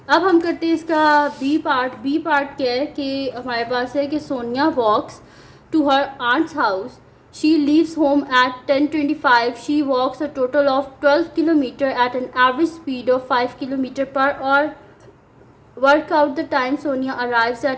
अब हम करते हैं इसका बी पार्ट। बी पार्ट क्या है कि हमारे पास है कि Sonia walks to her aunt's house, she leaves home at 10:25, she walks a total of 12 kilometre at an average speed of 5 kilometre per hour, work out the time Sonia arrives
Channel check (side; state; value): both; identical; correlation 1.00